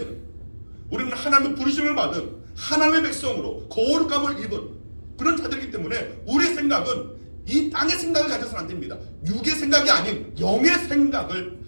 우리는 하나님의 부르심을 받은 하나님의 백성으로 거룩함을 입은 그런 자들이기 때문에 우리의 생각은 이 땅의 생각을 가져서는 안 됩니다. 육의 생각이 아닌 영의 생각을,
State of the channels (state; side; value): inverted; both; correlation -1.00